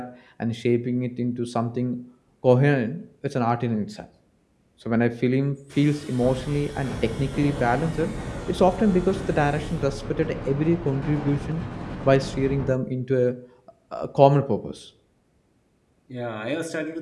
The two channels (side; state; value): both; identical; correlation 1.00